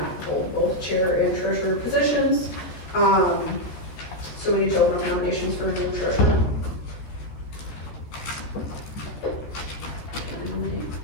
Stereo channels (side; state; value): right; late; 14 ms